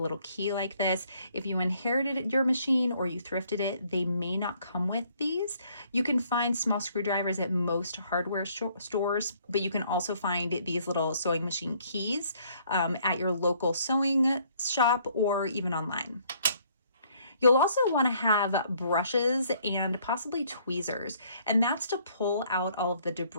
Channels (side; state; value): both; inverted; correlation -0.64